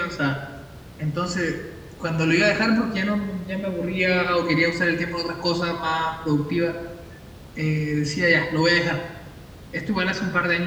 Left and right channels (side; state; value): both; identical; correlation 1.00